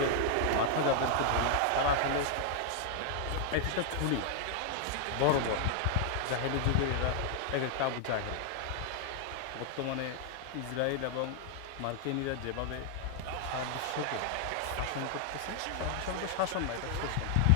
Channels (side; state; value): both; different; correlation 0.00